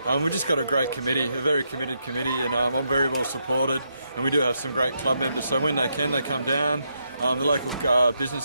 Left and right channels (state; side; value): inverted; both; correlation -0.80